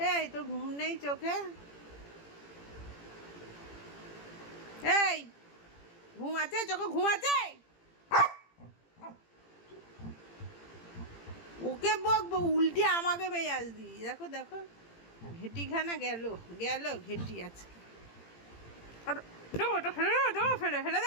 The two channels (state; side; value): late; right; 18 ms